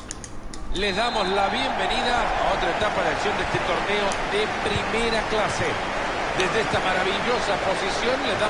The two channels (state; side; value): identical; both; correlation 1.00